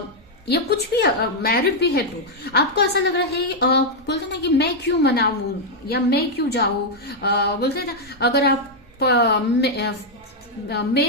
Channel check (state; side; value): normal; both; correlation -0.01